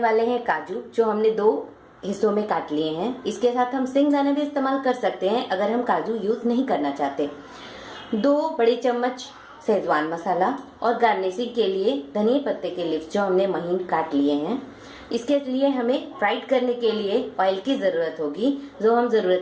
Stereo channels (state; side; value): identical; both; correlation 1.00